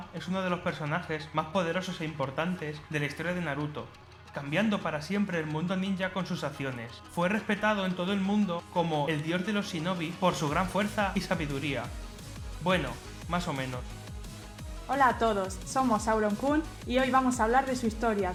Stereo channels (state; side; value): identical; both; correlation 1.00